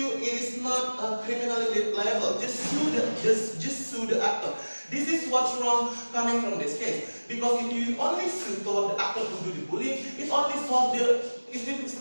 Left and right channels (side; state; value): both; inverted; correlation -1.00